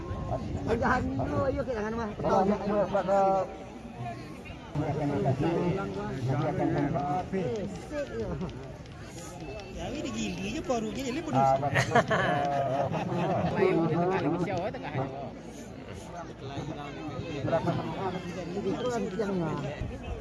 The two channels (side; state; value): both; identical; correlation 1.00